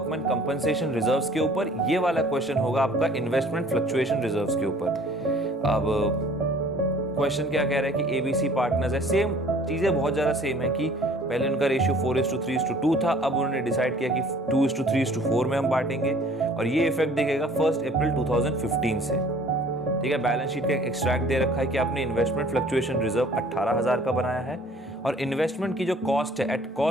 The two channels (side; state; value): both; normal; correlation 0.53